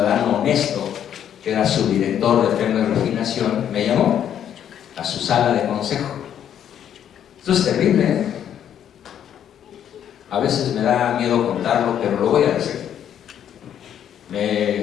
honesto, que era su director de Pemex Refinación, me llamó a su sala de consejo. Esto es terrible, ¿eh? A veces me da miedo contarlo, pero lo voy a decir. Me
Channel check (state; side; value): quieter; right; 9.7 dB